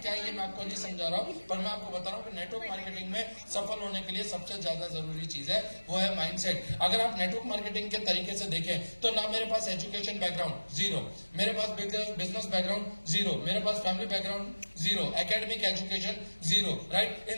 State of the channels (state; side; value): inverted; both; correlation -1.00